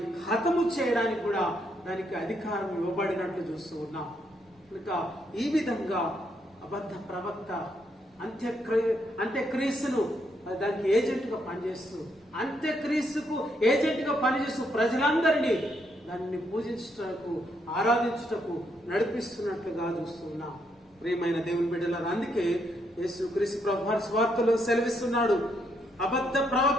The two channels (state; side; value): normal; both; correlation 0.76